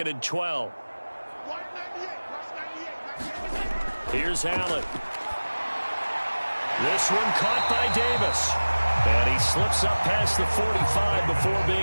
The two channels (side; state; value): both; inverted; correlation -1.00